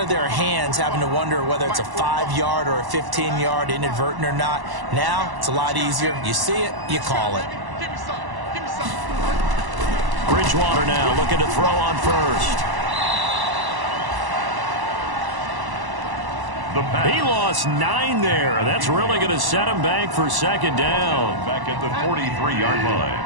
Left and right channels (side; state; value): left; late; 1.1 ms